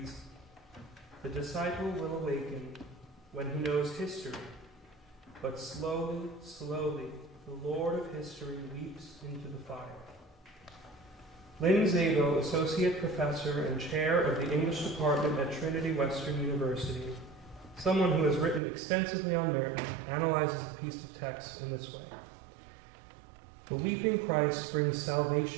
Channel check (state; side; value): drops out; left; at 18.6 s